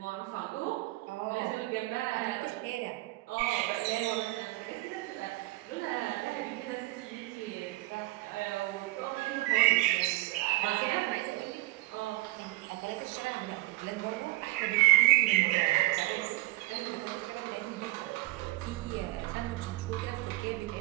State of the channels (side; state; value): left; quieter; 19.5 dB